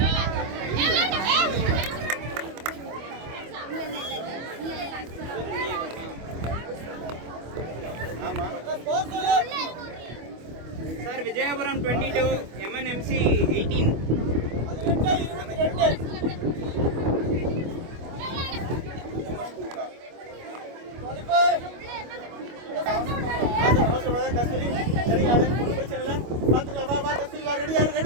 Sir Vijayapuram 22, MNMC 18. கஸ்தூரி சரி ஆடு, ஒன்றும் பிரச்சனை இல்லை, பார்த்துக்கலாம். வா கஸ்தூரி வா,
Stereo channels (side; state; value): left; late; 25 ms